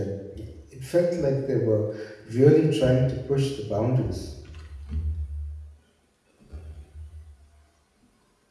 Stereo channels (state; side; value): identical; both; correlation 1.00